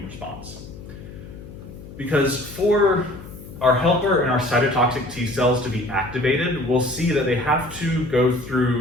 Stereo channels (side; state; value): left; noise; hum, 15 dB below the sound